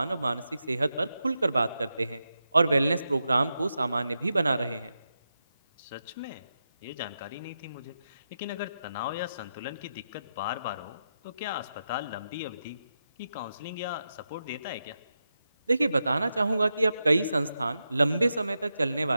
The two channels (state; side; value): inverted; both; correlation -0.88